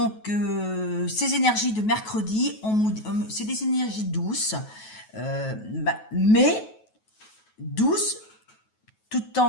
ces énergies de mercredi, c'est des énergies douces, mais douces tout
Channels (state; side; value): late; right; 9.3 ms